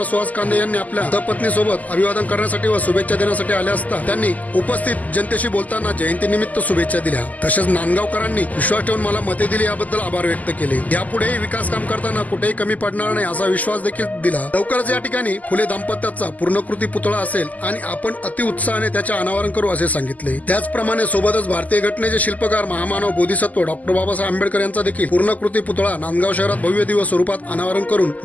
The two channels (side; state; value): right; late; 0.078 ms